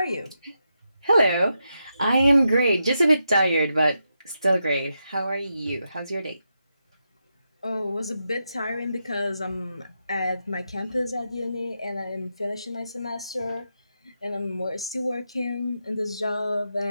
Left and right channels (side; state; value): both; inverted; correlation -0.85